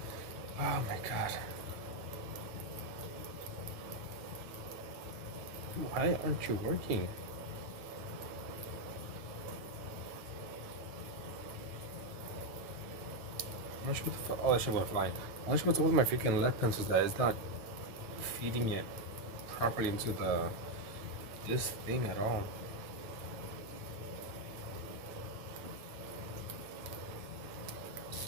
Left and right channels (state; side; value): late; left; 9.1 ms